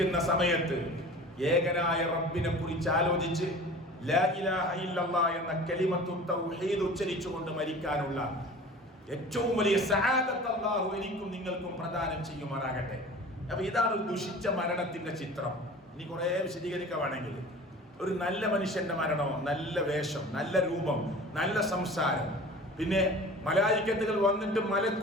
സമയത്ത് ഏകനായ റബ്ബിനെ കുറിച്ച് ആലോചിച്ച് ലാ ഇലാഹ ഇല്ലല്ലാഹ് എന്ന കലിമത്തു തൗഹീദ് ഉച്ചരിച്ചുകൊണ്ട് മരിക്കാനുള്ള ഏറ്റവും വലിയ സഅദത്ത് അല്ലാഹു എനിക്കും നിങ്ങൾക്കും പ്രദാനം ചെയ്യുമാറാകട്ടെ. അപ്പൊ ഇതാണ് ഒരു ദുഷിച്ച മരണത്തിന്റെ ചിത്രം. ഇനി കുറെ വിശദീകരിക്കുകയാണെങ്കിൽ, ഒരു നല്ല മനുഷ്യന്റെ മരണമോ, നല്ല വേഷം, നല്ല രൂപം, നല്ല സംസാരം, പിന്നെ മലായിക്കത്തുകൾ വന്നിട്ട്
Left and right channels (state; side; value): normal; both; correlation 0.40